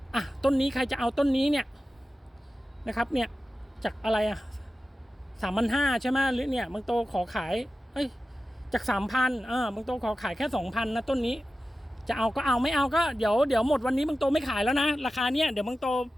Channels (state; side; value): normal; both; correlation 0.94